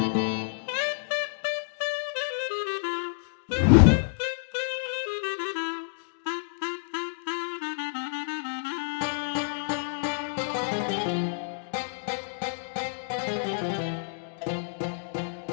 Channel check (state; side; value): silent; right; digital silence